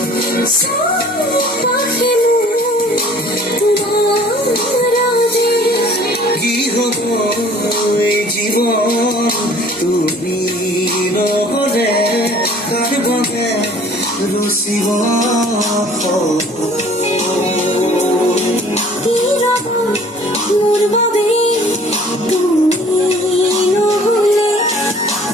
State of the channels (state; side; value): normal; both; correlation 0.52